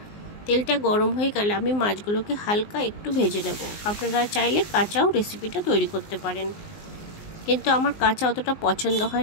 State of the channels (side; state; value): right; late; 19 ms